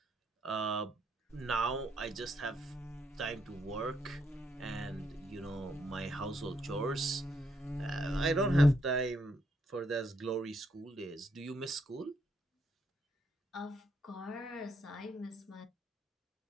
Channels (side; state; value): both; normal; correlation 0.75